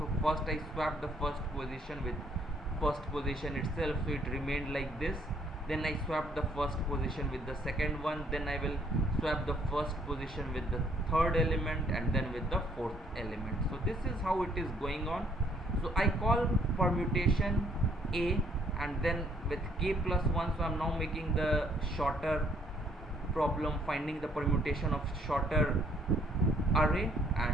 first I swapped the first position with first position itself, so it remained like this. Then I swap the first position with the second one, then I will swap the first position with the third element, and then with the fourth element. So this is how it is going on. So I call permutation a, and then with k plus 1, so I am now making the shorter problem, finding the permutation of shorter array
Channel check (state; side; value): normal; both; correlation 0.65